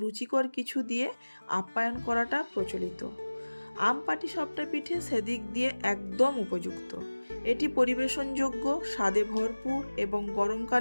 রুচিকর কিছু দিয়ে আপ্যায়ন করাটা প্রচলিত। আম পাটিসাপটা পিঠে সেদিক দিয়ে একদম উপযুক্ত। এটি পরিবেশনযোগ্য, স্বাদে ভরপুর এবং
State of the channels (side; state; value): both; inverted; correlation -1.00